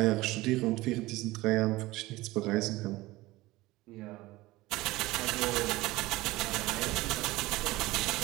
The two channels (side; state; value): left; quieter; 19.2 dB